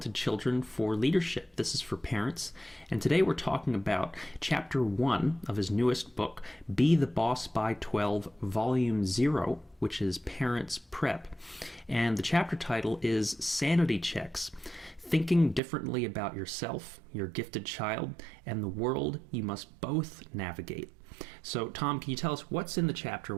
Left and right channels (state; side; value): drops out; left; at 15.6 s